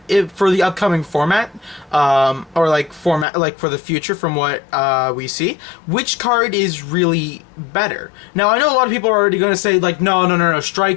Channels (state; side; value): drops out; right; at 3.2 s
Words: for the upcoming format, or like for the future from what we see, which card is really better. Now I know a lot of people are already going to say like no,